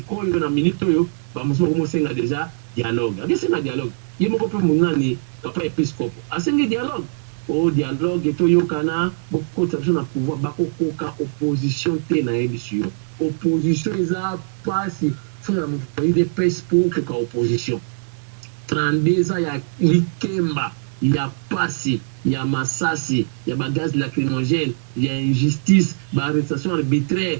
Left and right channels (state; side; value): silent; left; 63 dB below the other